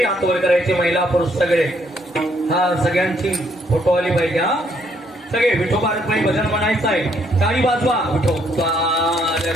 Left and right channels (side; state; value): both; normal; correlation 0.70